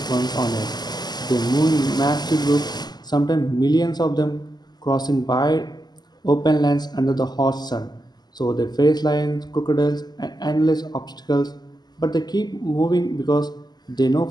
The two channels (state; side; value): late; right; 0.20 ms